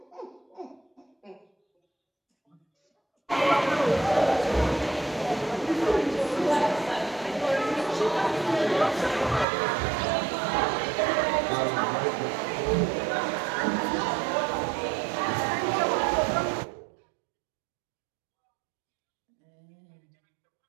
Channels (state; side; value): drops out; left; at 9.5 s